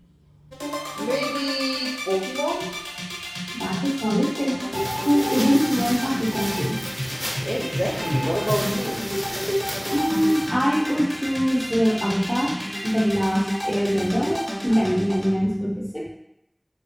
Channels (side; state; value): both; identical; correlation 1.00